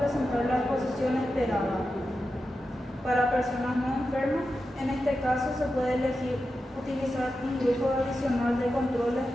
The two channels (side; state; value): both; normal; correlation 0.90